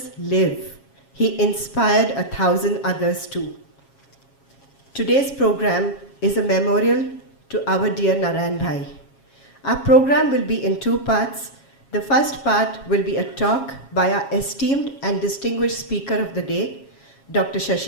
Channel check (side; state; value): right; late; 7.3 ms